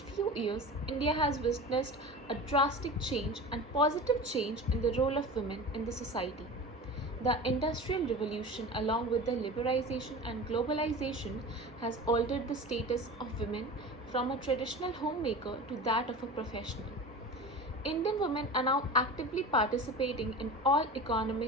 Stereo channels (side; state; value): both; normal; correlation 0.33